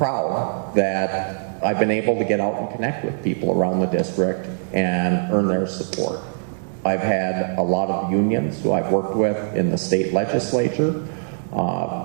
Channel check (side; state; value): left; silent; digital silence